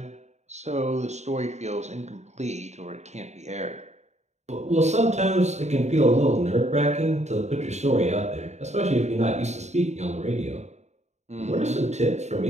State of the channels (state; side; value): late; left; 0.33 ms